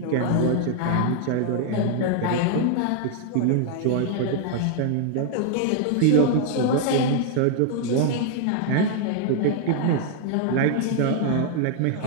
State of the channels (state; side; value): different; both; correlation 0.00